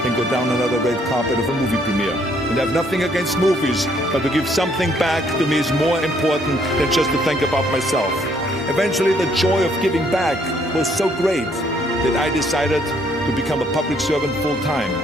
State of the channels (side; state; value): both; normal; correlation 0.67